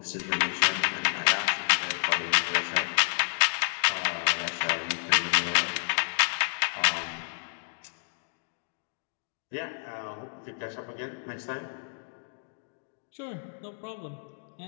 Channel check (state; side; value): silent; right; digital silence